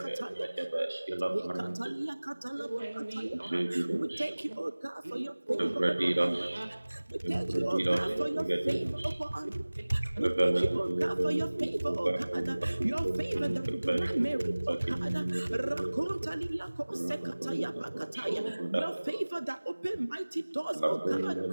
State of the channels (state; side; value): inverted; both; correlation -1.00